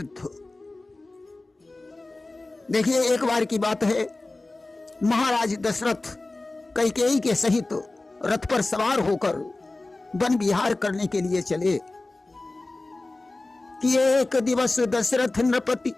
देखिए, एक बार की बात है, महाराज दशरथ कैकेयी के सहित रथ पर सवार होकर वन विहार करने के लिए चले कि एक दिवस दशरथ नृपति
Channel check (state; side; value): quieter; right; 3.0 dB